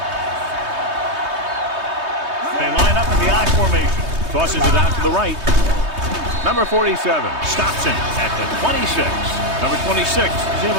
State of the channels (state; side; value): late; left; 3.2 ms